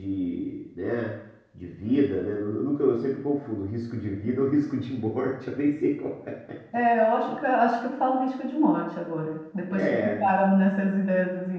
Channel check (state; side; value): identical; both; correlation 1.00